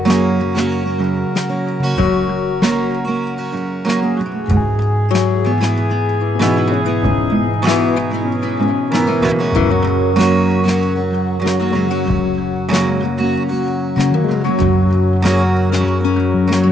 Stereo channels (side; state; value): both; normal; correlation 0.78